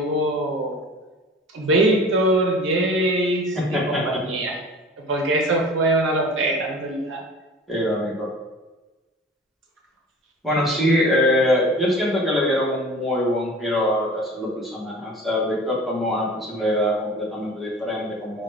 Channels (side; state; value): both; normal; correlation 0.41